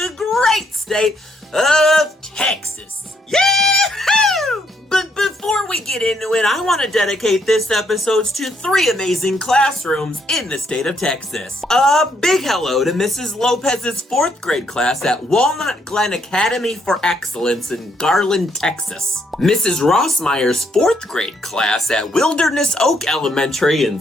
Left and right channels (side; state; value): both; normal; correlation 0.72